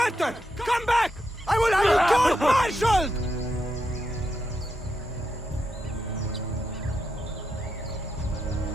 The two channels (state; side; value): normal; both; correlation 0.84